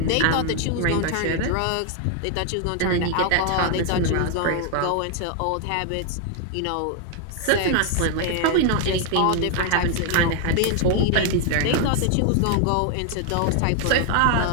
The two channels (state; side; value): different; both; correlation 0.00